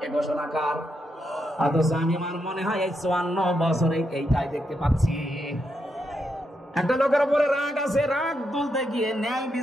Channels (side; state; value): both; normal; correlation 0.82